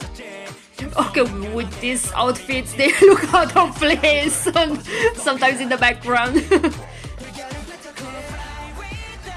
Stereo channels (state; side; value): identical; both; correlation 1.00